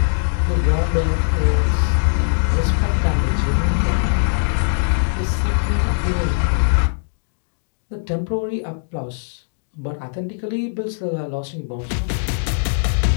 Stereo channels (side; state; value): right; silent; digital silence